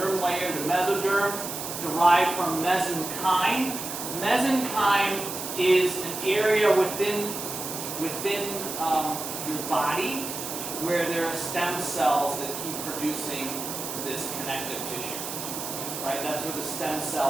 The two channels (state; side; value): noise; right; hiss, 6 dB below the sound